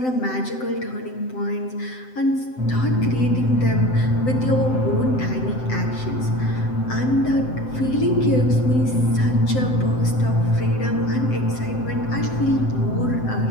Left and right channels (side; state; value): right; late; 7.8 ms